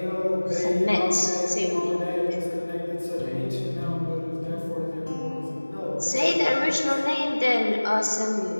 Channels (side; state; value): both; inverted; correlation -1.00